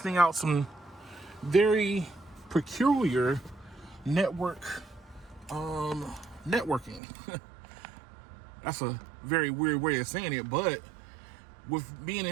out some very peculiar networking. That's a very weird way of saying it, but with being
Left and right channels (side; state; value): left; drops out; at 7.0 s